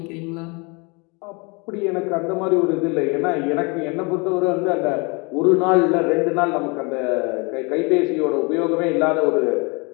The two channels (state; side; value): quieter; right; 30.2 dB